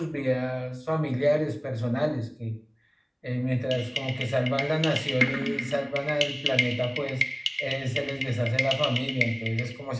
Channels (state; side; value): identical; both; correlation 1.00